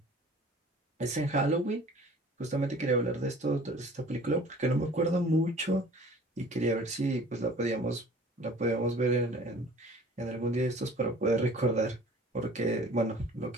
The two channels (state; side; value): normal; both; correlation 0.48